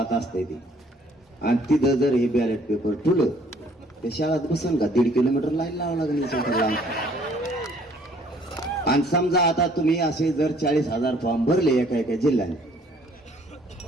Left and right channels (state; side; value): normal; both; correlation 0.60